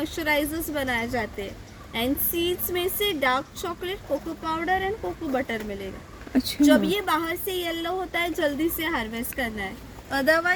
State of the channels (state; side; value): identical; both; correlation 1.00